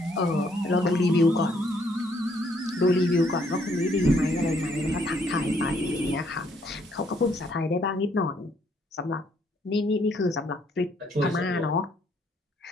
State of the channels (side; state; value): both; normal; correlation 0.68